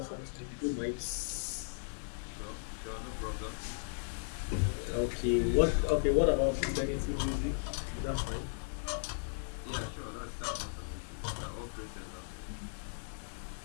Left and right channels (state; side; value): silent; right; digital silence